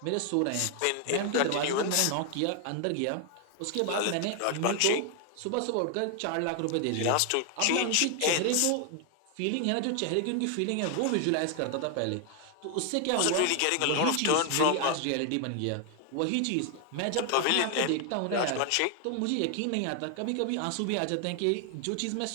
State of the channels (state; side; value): different; both; correlation 0.00